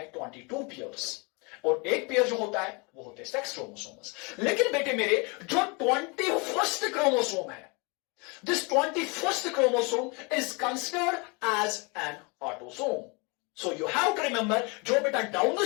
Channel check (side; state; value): right; quieter; 30.0 dB